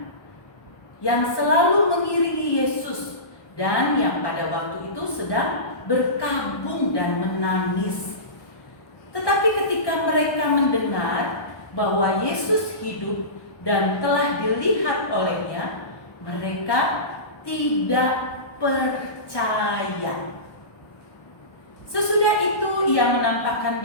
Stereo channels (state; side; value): late; right; 1.2 ms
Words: yang selalu mengiringi Yesus dan yang pada waktu itu sedang berkabung dan menangis. Tetapi ketika mereka mendengar bahwa Yesus hidup dan telah dilihat olehnya, mereka tidak percaya. Sesudah itu ia menampakkan